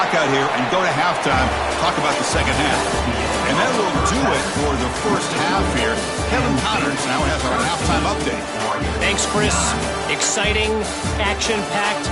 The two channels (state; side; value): identical; both; correlation 1.00